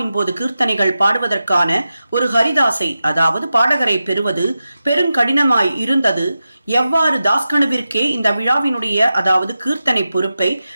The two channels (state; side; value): inverted; both; correlation -0.92